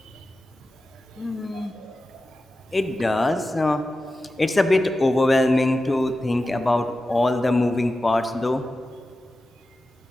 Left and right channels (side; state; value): both; normal; correlation 0.93